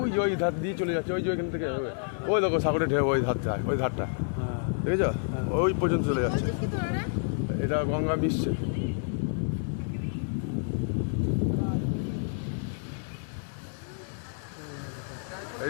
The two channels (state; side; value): silent; right; digital silence